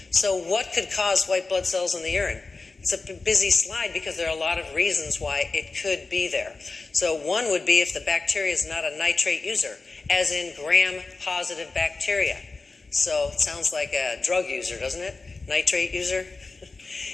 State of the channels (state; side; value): quieter; right; 3.8 dB